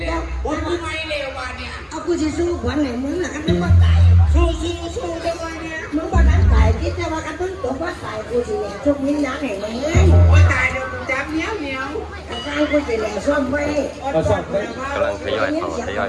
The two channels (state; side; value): identical; both; correlation 1.00